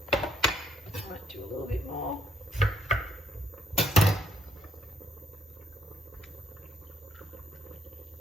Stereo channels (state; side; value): normal; both; correlation 0.70